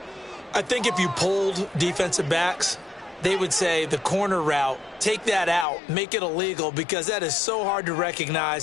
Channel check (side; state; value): right; drops out; at 5.7 s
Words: I think if you polled defensive backs, they would say the corner route, take that out, make it illegal, because that is so hard to